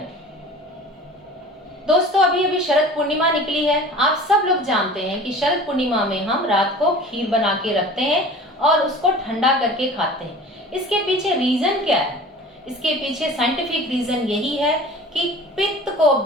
दोस्तों अभी अभी शरद पूर्णिमा निकली है। आप सब लोग जानते हैं कि शरद पूर्णिमा में हम रात को खीर बना के रखते हैं और उसको ठंडा करके खाते हैं। इसके पीछे रीजन क्या है? इसके पीछे साइंटिफिक रीजन यही है कि पित्त को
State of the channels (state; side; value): normal; both; correlation 0.41